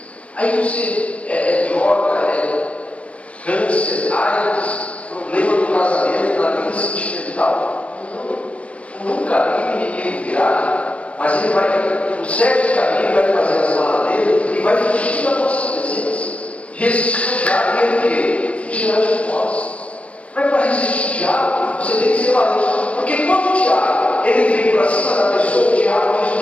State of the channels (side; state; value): right; late; 0.063 ms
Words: Aí você droga, câncer, AIDS, problema no casamento, na vida sentimental. Não, nunca vi ninguém virar, mas ele vai, no 7 caminho, vai fazer as malas dele e vai fugir da nossa presença. Resistir o diabo é o quê? Fugir de nós. Mas para resistir o diabo, você tem que ser valente. Porque quando o diabo ele vem para cima da pessoa, o diabo diz